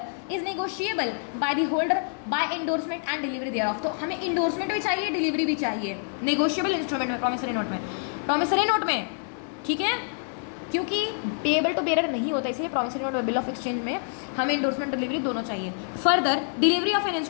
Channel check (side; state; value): right; silent; 59 dB below the other